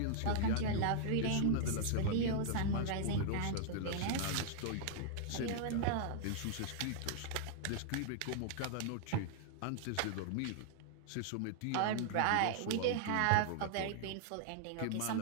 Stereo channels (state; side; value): different; both; correlation -0.01